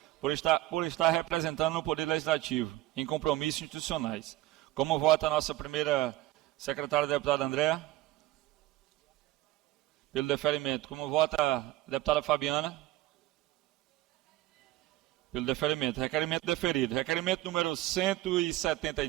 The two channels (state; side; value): quieter; left; 16.6 dB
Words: por estar representando o Poder Legislativo em compromissos institucionais. Como vota a nossa primeira secretária, deputada Andréa? Pelo deferimento. Como vota a deputada Fabiana? Pelo deferimento. Requerimento deferido. Requerimento número